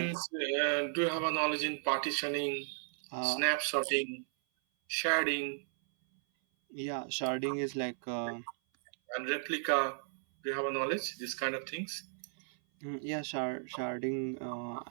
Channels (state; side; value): silent; left; 54 dB below the other